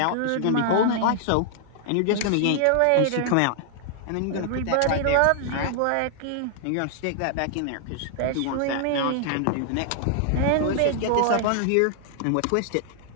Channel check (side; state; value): both; different; correlation 0.00